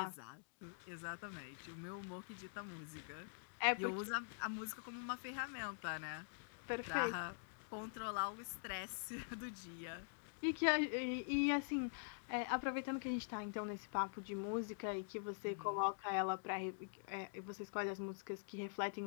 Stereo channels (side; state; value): right; silent; digital silence